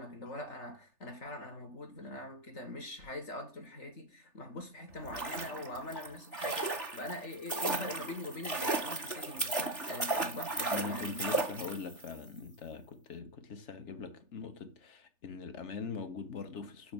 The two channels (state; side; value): late; right; 3.4 ms